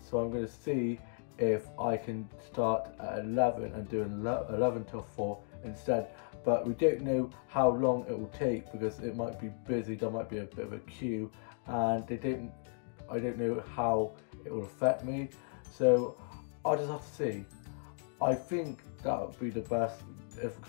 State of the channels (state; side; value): silent; right; 54 dB below the other